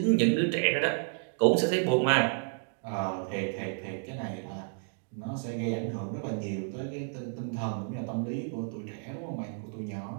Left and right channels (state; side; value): silent; left; digital silence